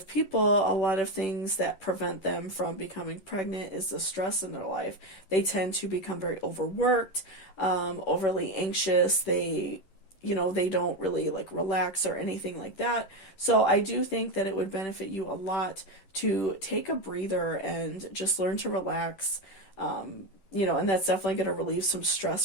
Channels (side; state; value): right; late; 10 ms